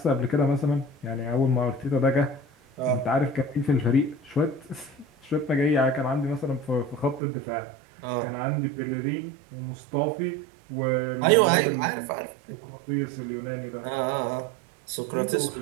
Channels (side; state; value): left; drops out; at 7.2 s